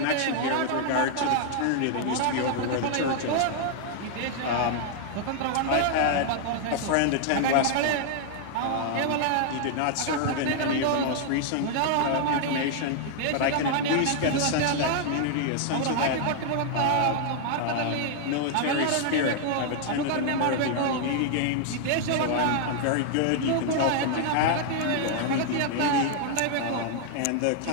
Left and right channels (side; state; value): both; different; correlation 0.00